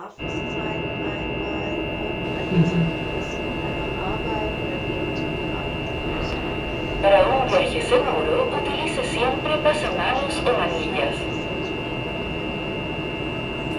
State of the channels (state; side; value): identical; both; correlation 1.00